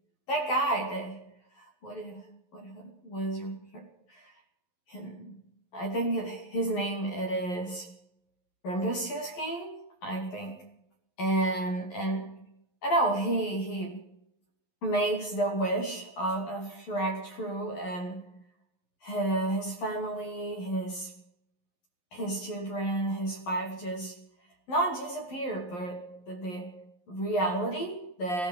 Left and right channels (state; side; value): late; right; 11 ms